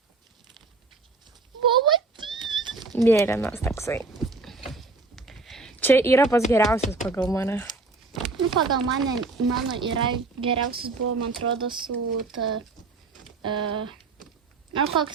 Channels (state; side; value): quieter; left; 3.7 dB